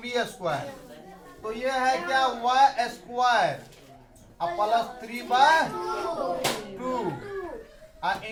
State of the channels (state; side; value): identical; both; correlation 1.00